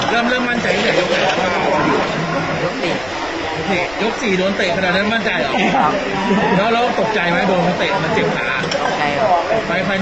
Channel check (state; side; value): noise; left; rumble, 19 dB below the sound